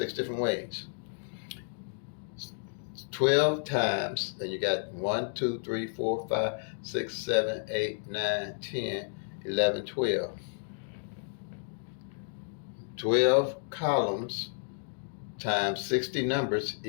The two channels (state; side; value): silent; right; digital silence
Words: different ways. 12 times, and you got 1, 2, 3, 4, 5, 6, 7, 8, 9, 10, 11, 12. 12 columns times 60 numbers